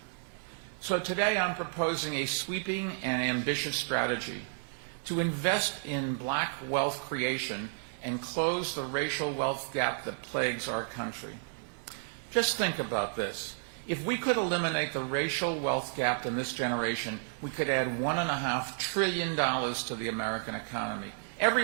So today I'm proposing a sweeping and ambitious strategy to invest in black wealth creation and close the racial wealth gap that plagues our country. Just think about this. If we could eliminate the racial wealth gap in this generation, we could add $1.5 trillion to the American economy.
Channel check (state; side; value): silent; left; 56 dB below the other